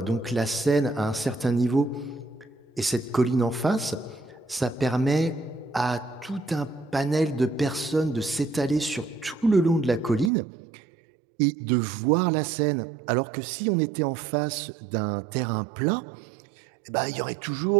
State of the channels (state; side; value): drops out; left; at 10.3 s